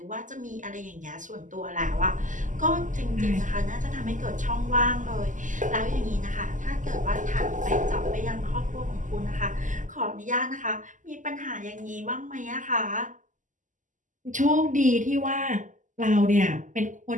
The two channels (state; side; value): late; left; 0.37 ms